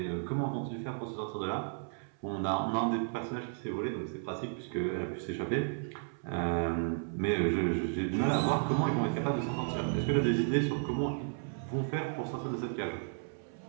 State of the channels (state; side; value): silent; left; 55 dB below the other